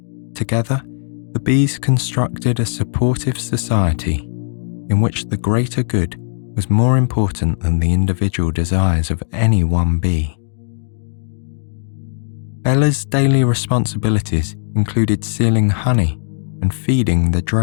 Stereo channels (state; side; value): silent; right; digital silence